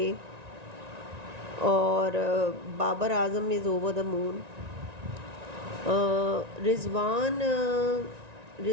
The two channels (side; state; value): left; late; 1.9 ms